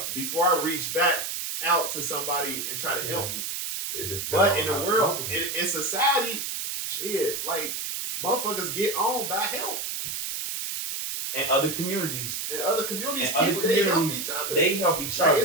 before I reach back out to somebody and try to help me. But in the world, in society, shit, like motherfuckers get on by help. And other communities. They help each other. They help each other.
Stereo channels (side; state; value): right; noise; hiss, 4 dB below the sound